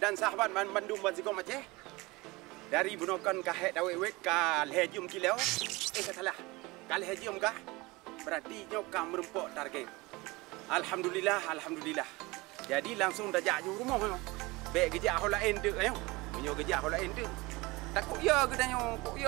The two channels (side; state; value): left; quieter; 22.9 dB